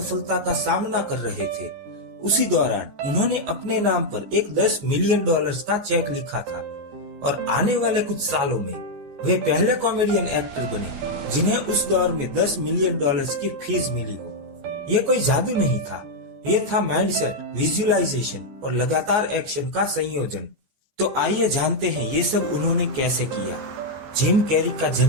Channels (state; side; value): late; left; 14 ms